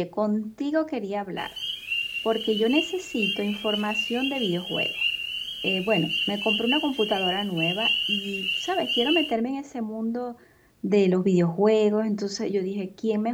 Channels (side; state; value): both; identical; correlation 1.00